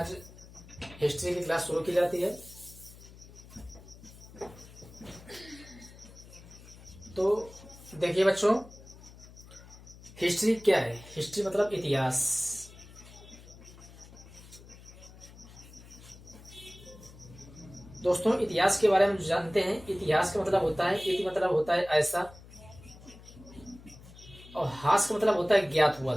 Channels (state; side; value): noise; left; hum, 19 dB below the sound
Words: हिस्ट्री की क्लास शुरू की जाती है। तो देखिए बच्चों, हिस्ट्री क्या है? हिस्ट्री मतलब इतिहास। दोस्तों, इतिहास के बारे में जो जानते हैं, इतिहास का मतलब होता है, इति मतलब होता है ऐसा, और हास का मतलब होता है ज्ञात